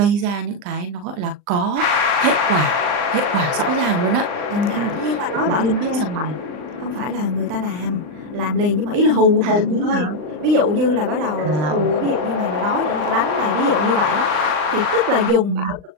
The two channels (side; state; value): left; late; 39 ms